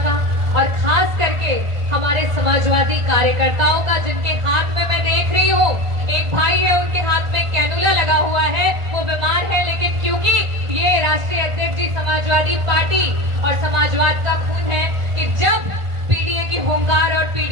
का, और खास करके हमारे समाजवादी कार्यकर्ताओं का, जिनके हाथ में मैं देख रही हूँ एक भाई है, उनके हाथ में कैनुला लगा हुआ है, वो बीमार है, लेकिन क्योंकि ये राष्ट्रीय अध्यक्ष जी समाजवादी पार्टी और समाजवाद का खून है कि जब पीडीए की होमगार्ड और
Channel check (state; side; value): late; left; 1.5 ms